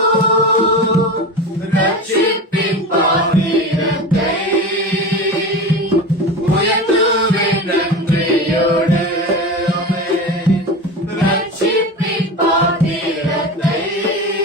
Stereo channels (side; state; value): both; normal; correlation 0.28